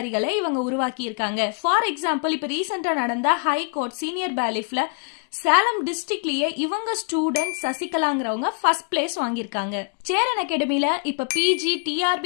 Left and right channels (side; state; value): right; quieter; 37.2 dB